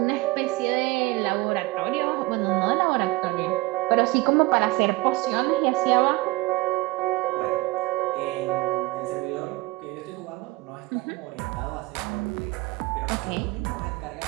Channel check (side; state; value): left; quieter; 21.6 dB